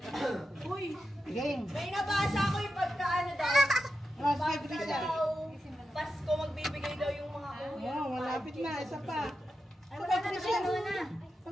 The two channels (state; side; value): normal; both; correlation 0.89